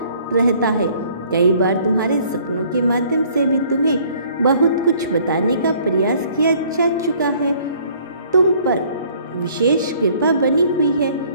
रहता है। कई बार तुम्हारे सपनों के माध्यम से भी तुम्हें बहुत कुछ बताने का प्रयास किया जा चुका है। तुम पर विशेष कृपा बनी हुई है,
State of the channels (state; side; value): inverted; both; correlation -0.58